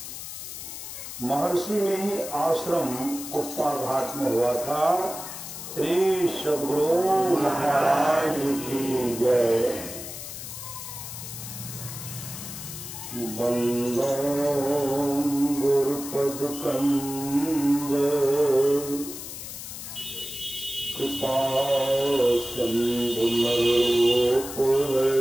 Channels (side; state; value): left; noise; hiss, 10 dB below the sound